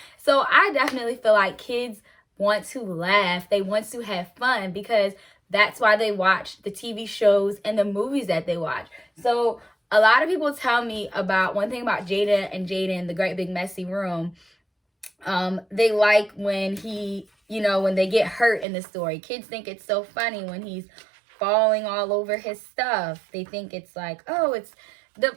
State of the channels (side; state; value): left; drops out; at 18.7 s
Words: So I definitely feel like kids want to laugh. They want to have fun, because that's why they watch the TV shows and the movies that they watch. So a lot of people tell me about one thing about Jada and Jaden, The Great Big Messy Room. They like when when they get hurt in the story. Kids think it's so funny when he's falling all over his stuff. They think it's like, oh, it's I